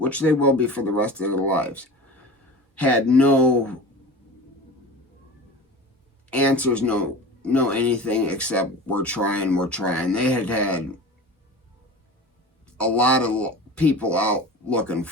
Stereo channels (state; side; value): normal; both; correlation 0.34